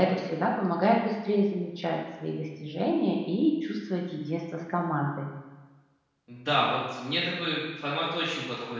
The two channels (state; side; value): identical; both; correlation 1.00